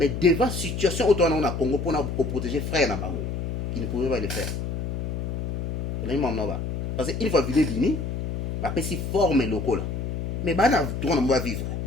devant situation autour na Congo pour na protéger frère na bango il ne pouvait pas le faire parce que il faut vivre bini ba pesi forme lokola mais bana droit na va vivre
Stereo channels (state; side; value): noise; left; hum, 4 dB below the sound